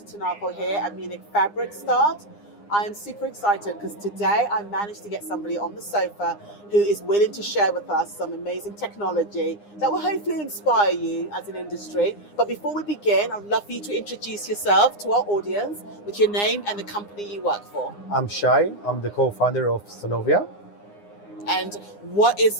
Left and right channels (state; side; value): late; right; 9.8 ms